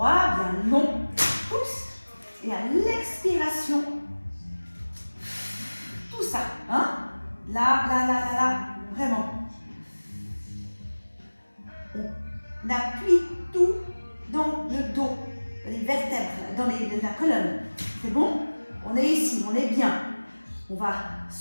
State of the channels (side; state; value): both; inverted; correlation -1.00